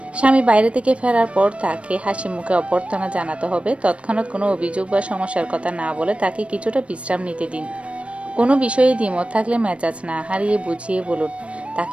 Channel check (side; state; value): left; late; 0.061 ms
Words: স্বামী বাইরে থেকে ফেরার পর তাকে হাসি মুখে অভ্যর্থনা জানাতে হবে, তৎক্ষণাৎ কোনো অভিযোগ বা সমস্যার কথা না বলে তাকে কিছুটা বিশ্রাম নিতে দিন। কোনো বিষয়ে দ্বিমত থাকলে মেজাজ না হারিয়ে বুঝিয়ে বলুন,